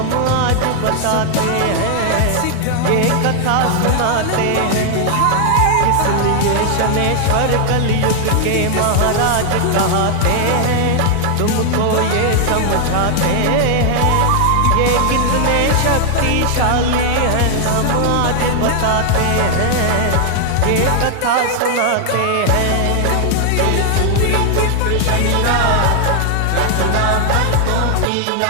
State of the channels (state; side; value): different; both; correlation 0.00